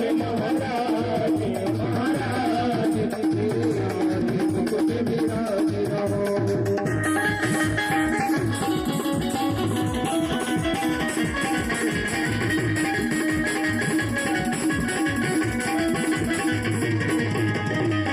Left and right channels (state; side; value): identical; both; correlation 1.00